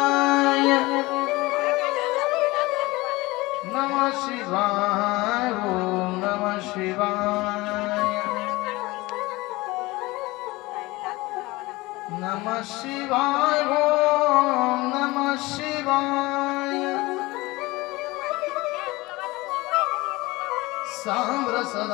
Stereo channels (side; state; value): right; quieter; 21.3 dB